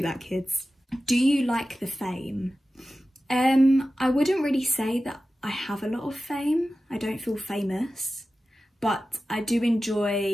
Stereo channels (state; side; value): normal; both; correlation 0.94